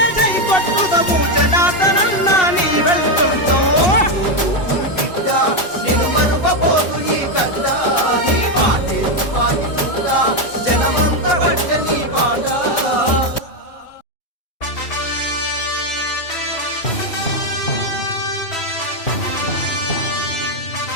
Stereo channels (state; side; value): late; right; 2.7 ms